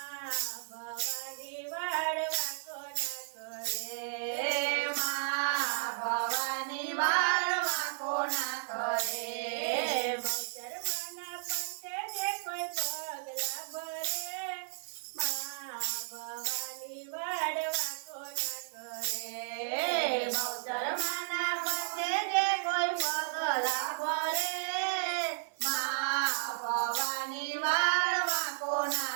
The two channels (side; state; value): left; silent; 55 dB below the other